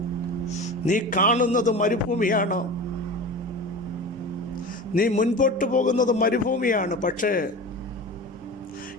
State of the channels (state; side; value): normal; both; correlation 0.32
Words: നീ കാണുന്നത് മരുഭൂമിയാണ്, നീ മുൻപോട്ട് പോകുന്നത് മരുഭൂമിയാണ്. പക്ഷേ